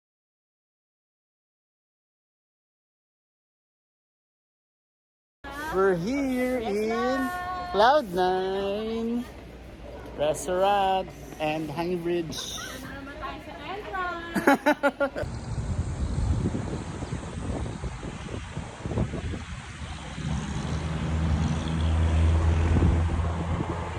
We're here in Cloud9 Restaurant and Hanging Bridge.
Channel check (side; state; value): both; identical; correlation 1.00